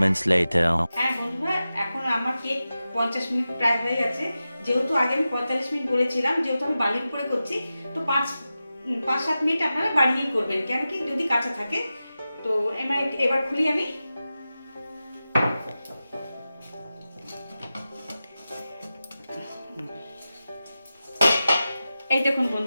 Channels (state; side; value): inverted; both; correlation -0.93